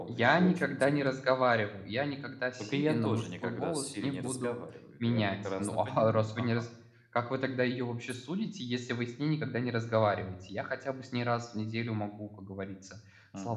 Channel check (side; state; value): both; identical; correlation 1.00